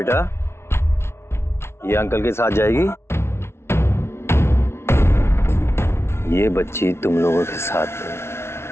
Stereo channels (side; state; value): right; late; 0.12 ms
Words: ये अंकल के साथ जाएगी। ये बच्ची तुम लोगों के